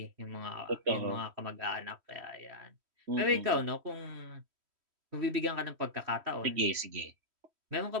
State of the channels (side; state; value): left; late; 3.1 ms